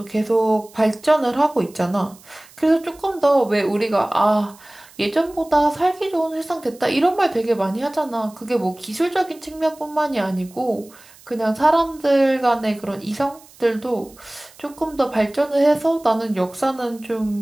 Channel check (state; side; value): noise; right; hiss, 24 dB below the sound